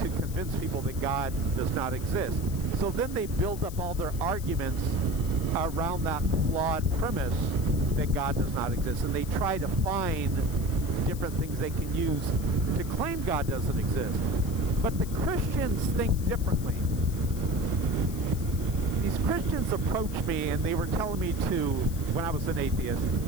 convince people that God does not exist. So then they build up all their arguments around that flawed premise that God does not exist. And they try to find different things they can use to claim God doesn't exist. But the Christians think differently. These Christians approached me and they were telling me to, when I was an atheist,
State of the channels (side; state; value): left; noise; hiss, 15 dB below the sound